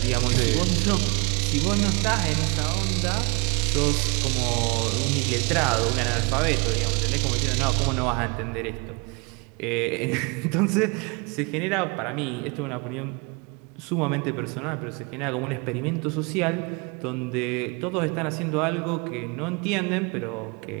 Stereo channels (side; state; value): left; quieter; 30.9 dB